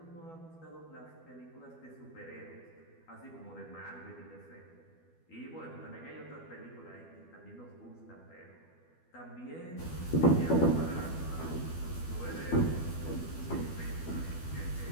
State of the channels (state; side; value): late; right; 12 ms